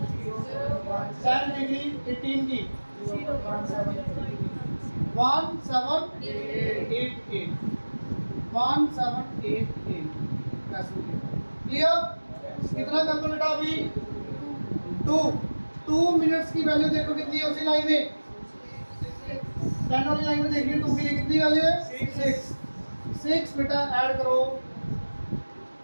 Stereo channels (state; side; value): inverted; both; correlation -1.00